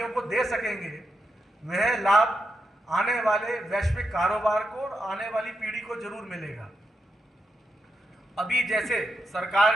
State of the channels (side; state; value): both; normal; correlation 0.84